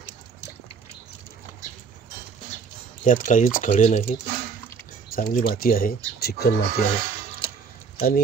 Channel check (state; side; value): quieter; left; 5.7 dB